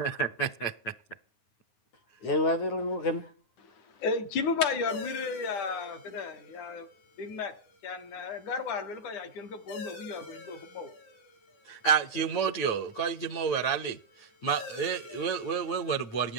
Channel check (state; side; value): late; right; 9.5 ms